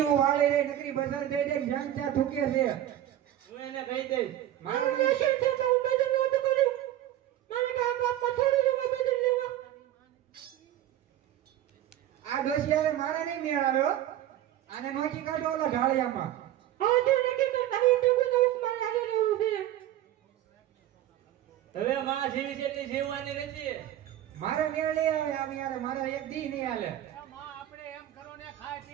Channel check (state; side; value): quieter; left; 12.6 dB